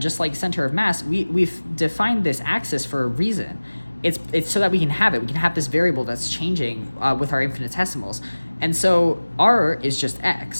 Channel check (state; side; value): inverted; both; correlation -1.00